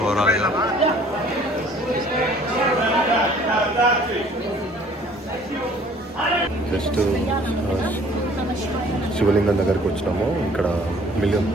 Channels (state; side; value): normal; both; correlation 0.54